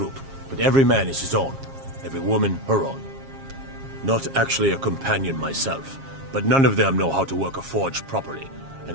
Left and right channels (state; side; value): late; left; 7.4 ms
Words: but every man is his own. Every woman, her own. Not actually a companion myself, but none of them know how to work a forge properly, and